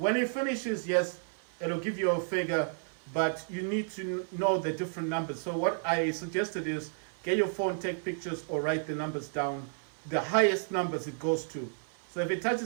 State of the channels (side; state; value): left; silent; 57 dB below the other